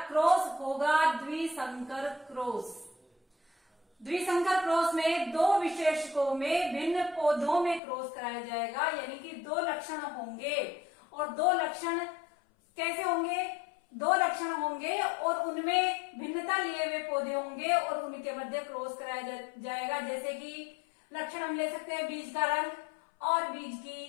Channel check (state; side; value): drops out; right; at 7.8 s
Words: क्रॉस होगा द्विसंकर क्रॉस। द्विसंकर क्रॉस में दो विशेषकों में भिन्न पौधों में क्रॉस कराया जाएगा, यानी कि दो लक्षण होंगे। और दो लक्षण कैसे होंगे? दो लक्षण होंगे और उनमें भिन्नता लिए हुए पौधे होंगे और उनके मध्य क्रॉस कराया जाएगा। जैसे कि लक्षण हम ले सकते हैं बीज का रंग और बीज की